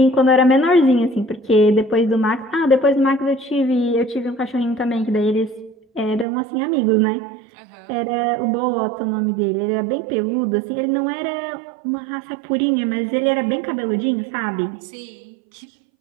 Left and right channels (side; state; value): left; drops out; at 6.2 s